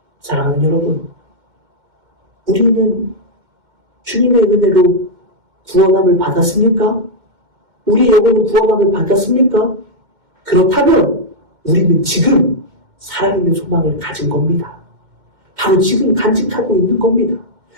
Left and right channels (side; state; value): left; late; 2.1 ms